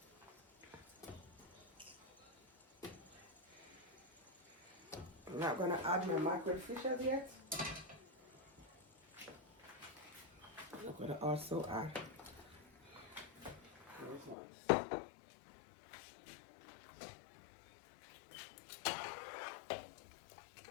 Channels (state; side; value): drops out; right; at 14.4 s